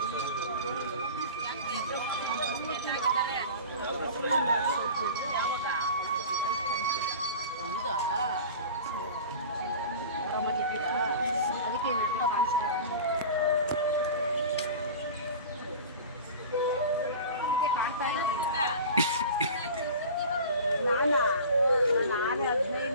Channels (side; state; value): both; inverted; correlation -0.36